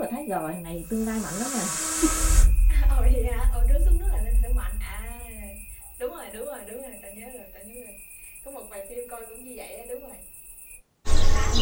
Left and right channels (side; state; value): both; identical; correlation 1.00